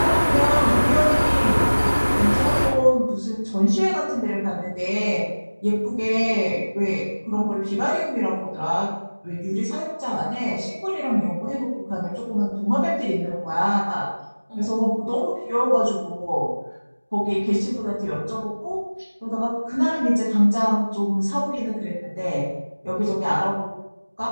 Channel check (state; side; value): inverted; both; correlation -1.00